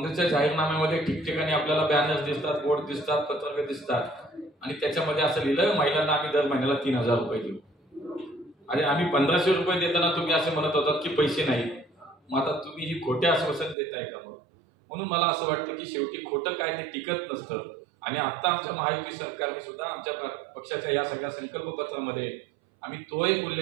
जाहीरनाम्यामध्ये ठिकठिकाणी आपल्याला बॅनर्स दिसतात, बोर्ड दिसतात, पत्रक दिसतात आणि त्याच्यामध्ये असं लिहिलं, महिलांना आम्ही दर महिन्याला 3,000 रुपये देऊ. अरे आम्ही 1,500 रुपये देताना तुम्ही असे म्हणत होतात की पैसे नाही. मग आता तुम्ही ही खोटे आश्वासन देताय का? म्हणून मला असं वाटतं की शेवटी खोटं काय ते टिकत नसतं. आणि आता आमच्या महायुती सरकारने सुद्धा आमच्या पक्षाच्या या सगळ्या संकल्पपत्रामध्ये आम्ही तो एक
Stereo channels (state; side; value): drops out; left; at 13.8 s